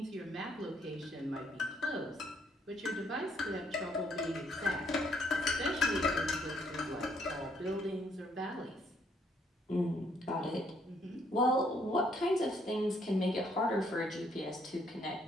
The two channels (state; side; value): normal; both; correlation 0.69